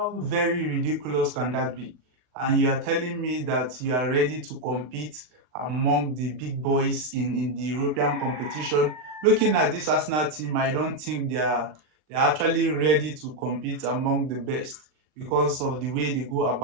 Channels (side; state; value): left; late; 40 ms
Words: very ridiculous can that be? And you are telling me that you are ready to compete among the big boys in the European competition. Looking at this Arsenal team, I don't think they're actually ready to compete among the best because of the way they go